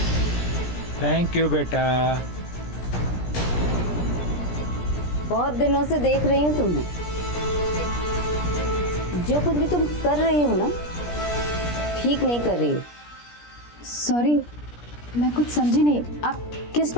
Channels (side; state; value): right; late; 17 ms